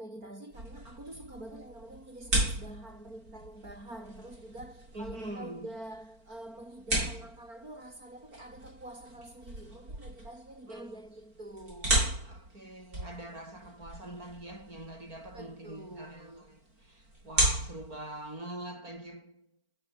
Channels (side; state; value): left; late; 4.4 ms